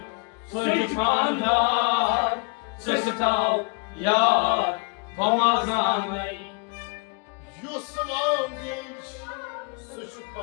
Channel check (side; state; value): right; quieter; 34.0 dB